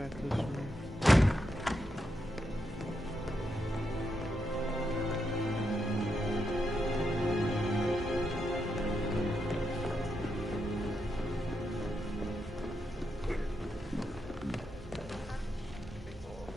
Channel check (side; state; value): both; normal; correlation 0.84